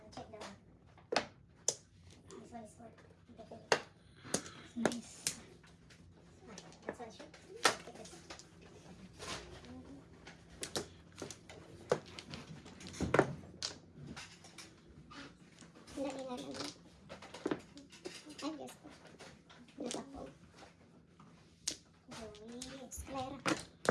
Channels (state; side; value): identical; both; correlation 1.00